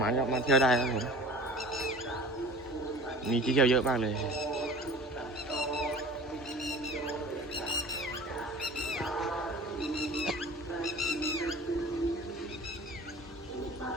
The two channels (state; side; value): normal; both; correlation 0.41